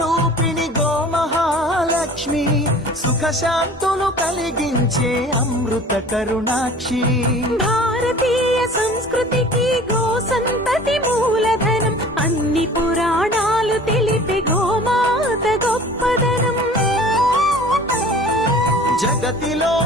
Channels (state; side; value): normal; both; correlation 0.45